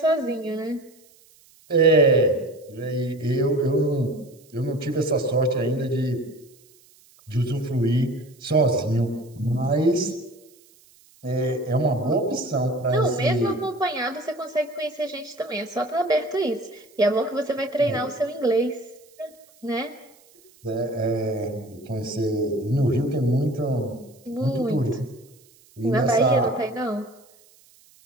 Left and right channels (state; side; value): noise; right; hiss, 29 dB below the sound